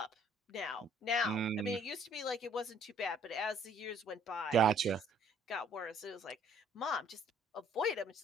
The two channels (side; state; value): both; normal; correlation 0.60